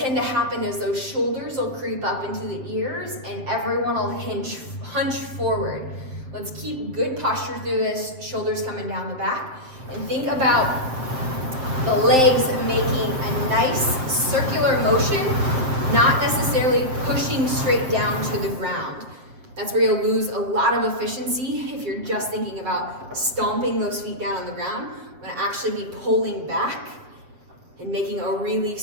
to happen is those shoulders will creep up into the ears and everyone will hunch forward. Let's keep good posture through this, shoulders coming down the back, and think about the legs making a nice circular motion, not necessarily pushing straight down to the ground. That's where you'll lose a lot of efficiency if you're just thinking about stomping those feet down on the ground. I'm gonna actually be pulling back and making a really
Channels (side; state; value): left; late; 7.7 ms